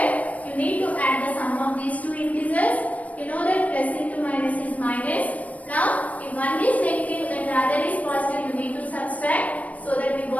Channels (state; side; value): late; right; 0.069 ms